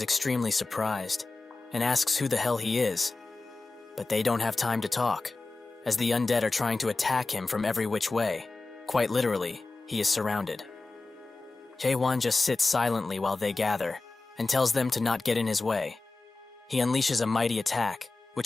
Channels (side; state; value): right; quieter; 3.5 dB